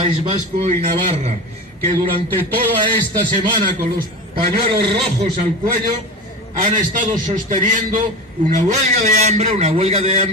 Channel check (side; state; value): both; normal; correlation 0.28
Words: Vasco y Navarra, que durante toda esta semana, con los pañuelos rojos al cuello, han estado sosteniendo una huelga de